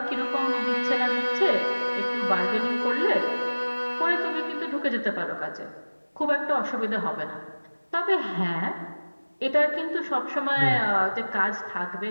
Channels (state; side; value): inverted; both; correlation -1.00